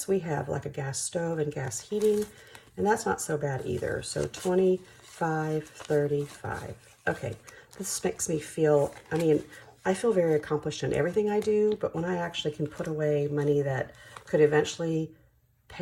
We have like a gas stove and gas heating, and that's not so bad either. So 25, 35. Okay, this makes me feel, I mean, I feel very accomplished in everything I do, but when I actually can put away money that could eventually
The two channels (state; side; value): identical; both; correlation 1.00